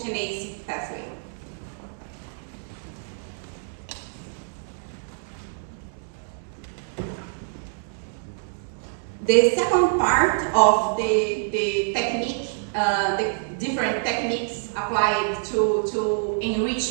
pathway. The second part of the technique, the different techniques applied to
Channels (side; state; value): left; silent; digital silence